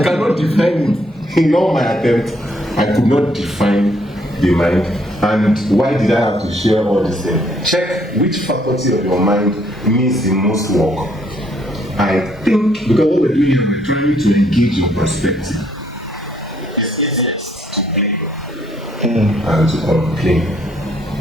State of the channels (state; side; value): normal; both; correlation 0.68